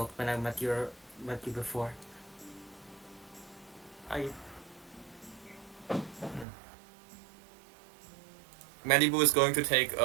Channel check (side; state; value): left; drops out; at 6.5 s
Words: when I met you before. Malibu is going to take